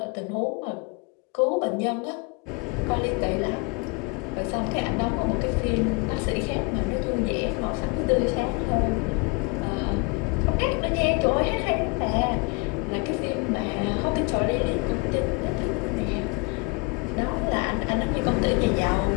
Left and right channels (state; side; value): quieter; right; 29.5 dB